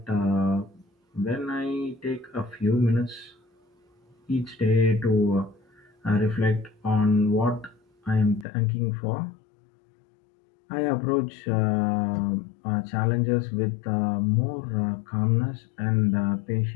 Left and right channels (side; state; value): right; drops out; at 8.5 s